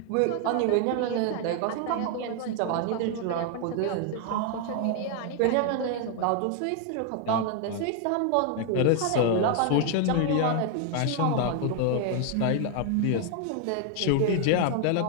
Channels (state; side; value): different; both; correlation 0.00